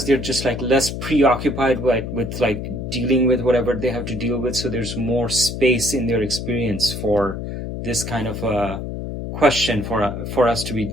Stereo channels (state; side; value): noise; left; hum, 6 dB below the sound